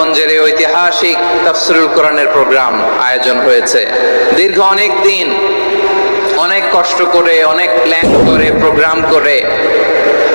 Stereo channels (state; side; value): inverted; both; correlation -1.00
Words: এই ঐতিহাসিক তাফসীরুল কোরআনের প্রোগ্রাম আয়োজন হয়েছে। দীর্ঘ অনেক দিন, অনেক কষ্ট করে, অনেক প্ল্যান করে, প্রোগ্রাম করে